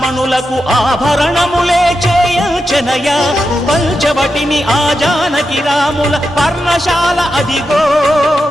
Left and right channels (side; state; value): both; normal; correlation 0.88